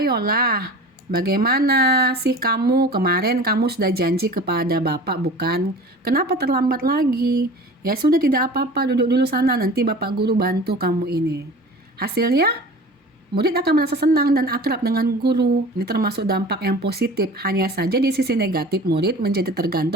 Bagaimana sih kamu? Kemarin kamu sudah janji kepada Bapak bukan? Kenapa terlambat lagi? Ya sudah, tidak apa-apa, duduk dulu sana, nanti Bapak Guru bantu kamu ini. Hasilnya, murid akan merasa senang dan akrab dengan guru. Ini termasuk dampak yang positif. Hanya saja di sisi negatif, murid menjadi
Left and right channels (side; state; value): both; normal; correlation 0.39